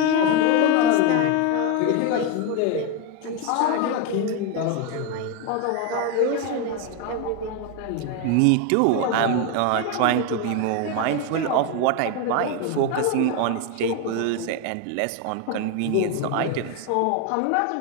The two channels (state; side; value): different; both; correlation 0.02